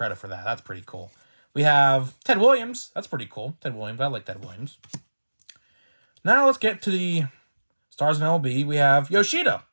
for that. That's pretty cool. We have Ted Williams. That's pretty cool. Ted Williams. I like Ted Williams. Now let's get to the stars of MLB. We have Yoshida.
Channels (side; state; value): both; inverted; correlation -1.00